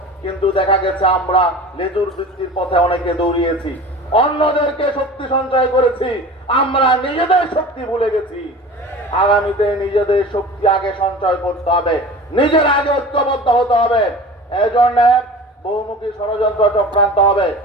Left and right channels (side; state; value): both; normal; correlation 0.37